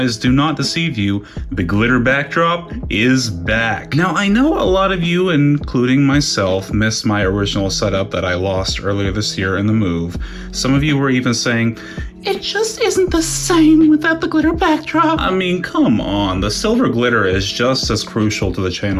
do not deceive you. The glitter backdrop is back. Now I know a lot of you, including myself, missed my original setup that I lost earlier this year in the move. Some of you were even saying, it just isn't the same without the glitter backdrop. I mean, come on, the silver glitter is just as crucial to the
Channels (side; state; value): both; identical; correlation 1.00